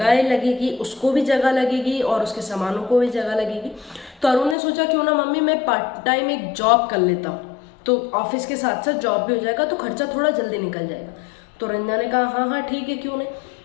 लगेगी, उसको भी जगह लगेगी और उसके सामानों को भी जगह लगेगी। तो अरुण ने सोचा क्यों ना मम्मी मैं पार्ट टाइम एक जॉब कर लेता हूँ, तो ऑफिस के साथ साथ जॉब भी हो जाएगा, तो खर्चा थोड़ा जल्दी निकल जाएगा। तो रंजना ने कहा हाँ हाँ ठीक है, क्यों नहीं।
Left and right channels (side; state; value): right; drops out; at 4.5 s